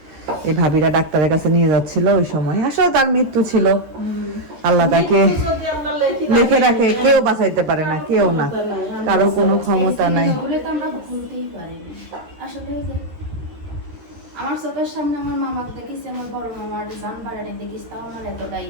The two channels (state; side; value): late; left; 13 ms